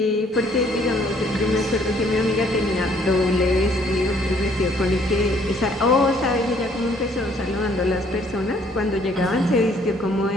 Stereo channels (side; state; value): both; normal; correlation 0.63